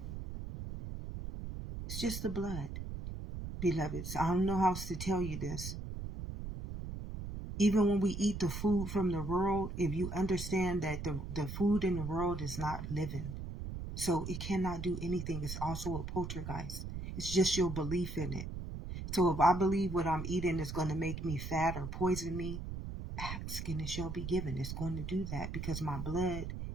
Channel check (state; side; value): noise; right; rumble, 6 dB below the sound